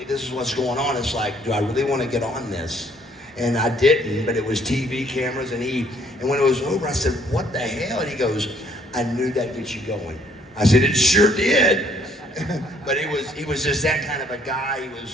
this is what's going on. It's like, do I really want to get on this? And I didn't, but it was TV cameras, and when it was over, I said, what the hell? And he goes, I knew that'd get you going. I said, it sure did. But he was just that kind of a guy.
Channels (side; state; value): both; normal; correlation 0.63